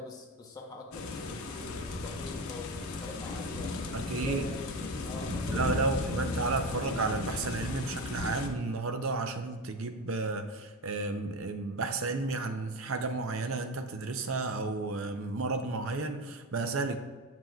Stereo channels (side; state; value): both; normal; correlation 0.22